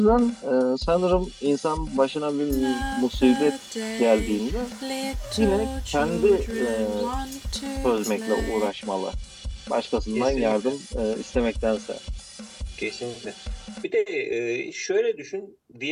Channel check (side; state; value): both; identical; correlation 1.00